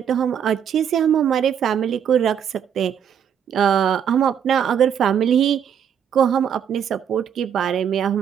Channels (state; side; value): quieter; left; 8.5 dB